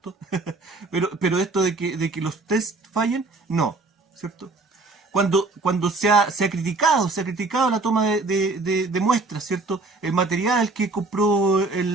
pero esto de que los test fallen, no, ¿cierto? Cuando se ha criticado la toma de muestras, ¿cierto? El material que compró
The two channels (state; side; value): quieter; left; 3.4 dB